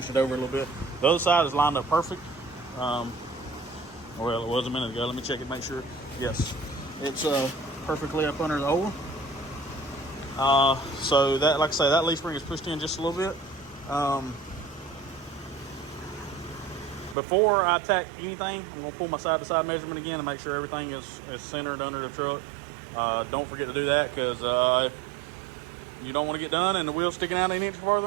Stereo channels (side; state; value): left; drops out; at 17.2 s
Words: it over a little bit. The other side is lined up perfect. Well, it was a minute ago. Let me check it, make sure. Yes, it's perfectly up under the hole. So that, like I say, that leaf spring is pushed in just a little bit. Before I tack anything, I'm gonna pull my side-to-side measurement again and make sure everything is centered under the truck. Don't forget to do that, because you don't want to get done and the wheel's sticking out an inch